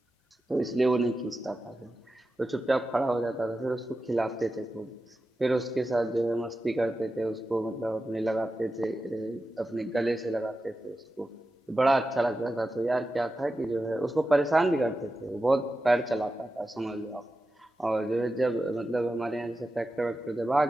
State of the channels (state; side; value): normal; both; correlation 0.91